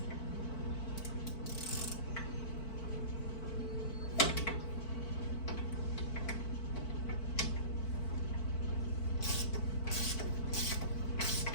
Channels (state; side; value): late; right; 4.5 ms